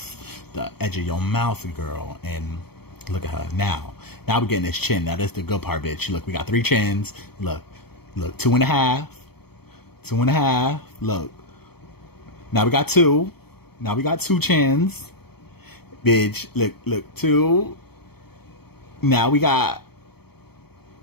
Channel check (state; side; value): late; right; 0.96 ms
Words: the edge of your mouth, girl. And look at her now we're getting this chin. Now that's the good part, bitch. Look, we got 3 chins. Look 2.5, look, now we got 2 chins, bitch. Look 2. Now we got